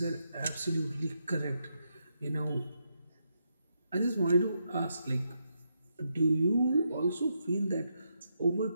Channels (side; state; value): both; inverted; correlation -0.81